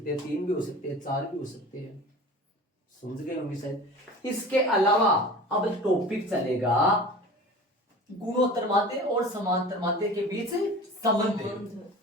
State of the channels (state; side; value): normal; both; correlation 0.38